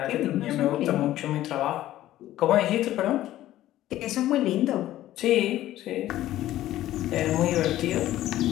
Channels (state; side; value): quieter; right; 14.1 dB